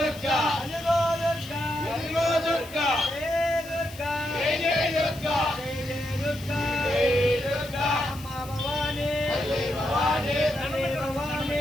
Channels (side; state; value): left; noise; hiss, 18 dB below the sound